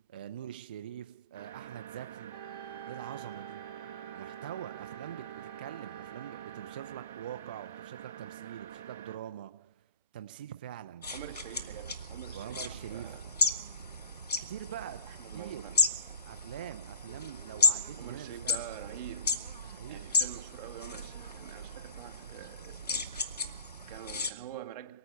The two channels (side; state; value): both; inverted; correlation -0.45